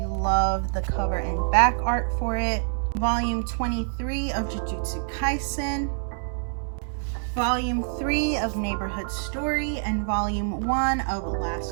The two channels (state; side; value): silent; left; 61 dB below the other